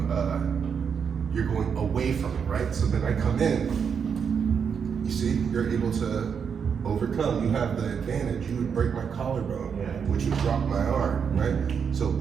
you're going away from it, right? So then I come in, you see, you're able to overcome. You have the advantage. You would break my collarbone, which would drop my arm, right? So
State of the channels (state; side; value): quieter; left; 6.8 dB